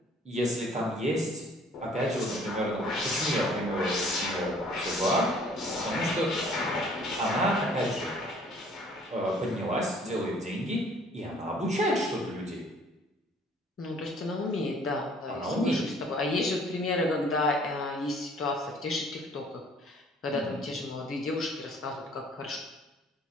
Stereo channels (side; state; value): both; normal; correlation 0.56